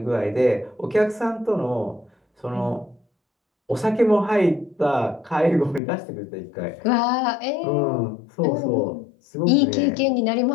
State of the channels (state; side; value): drops out; right; at 5.8 s